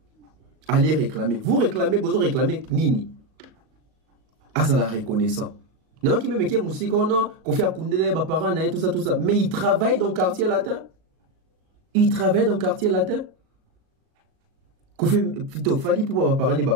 Allez réclamer. Vous réclamez, Bozo réclamez, Nini. Ah, ça la reconnaissant. Non, qui me met qui musique, non, qu'on fait à Koundele, Baparana et tout ça. Mais il travaille dans le quartier latin. Il travaille dans le quartier latin. Koffi, plutôt, Fali pour parler de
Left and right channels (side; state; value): left; late; 38 ms